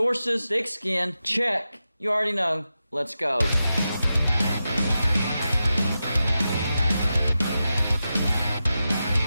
thick skin, check. You already know. Let's go.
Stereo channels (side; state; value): both; inverted; correlation -0.91